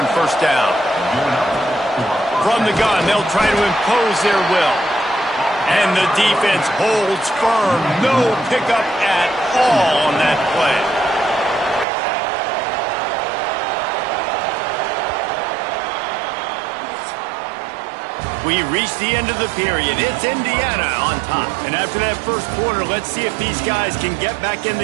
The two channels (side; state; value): left; drops out; at 11.9 s